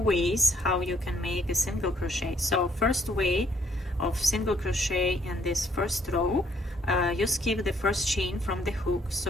how you can make a single crochet. So first way of single crochet in this first row, you skip the first chain from the hook.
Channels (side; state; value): both; normal; correlation 0.68